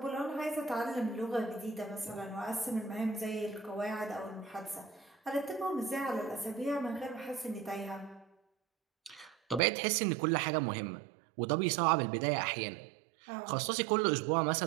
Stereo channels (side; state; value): left; drops out; at 9.6 s